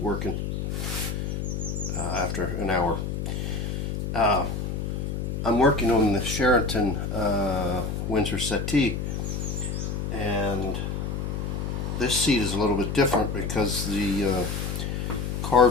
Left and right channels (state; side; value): noise; left; hum, 3 dB below the sound